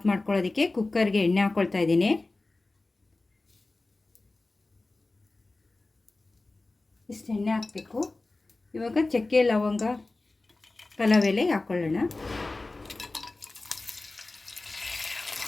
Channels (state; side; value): quieter; right; 3.2 dB